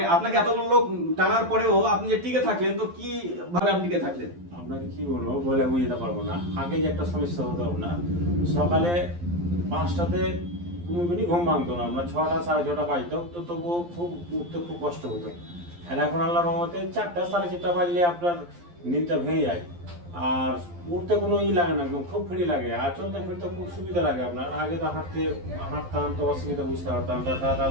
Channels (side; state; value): left; late; 12 ms